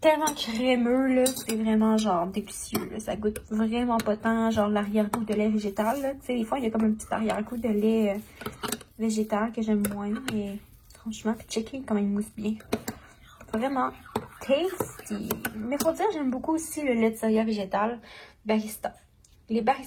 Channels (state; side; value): identical; both; correlation 1.00